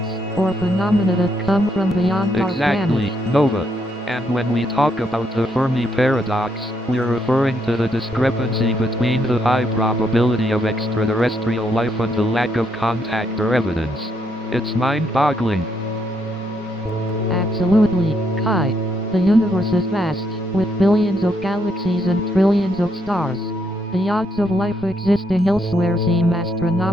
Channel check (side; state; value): both; normal; correlation 0.75